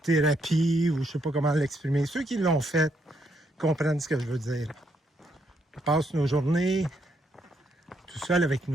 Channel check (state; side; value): normal; both; correlation 0.75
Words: thérapie, ou je sais pas comment l'exprimer. Ceux qui l'ont fait comprennent ce que je veux dire. On passe nos journées tout seul avec